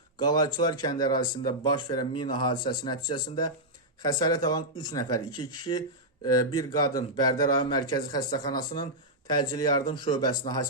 Qalayçılar kəndi ərazisində baş verən mina hadisəsi nəticəsində xəsarət alan 3 nəfər, 2 kişi, bir qadın Bərdə rayon mərkəzi xəstəxanasının təcili yardım şöbəsinə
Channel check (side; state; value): both; normal; correlation -0.08